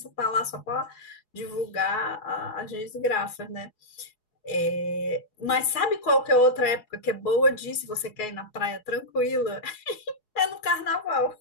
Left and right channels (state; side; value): late; right; 4.7 ms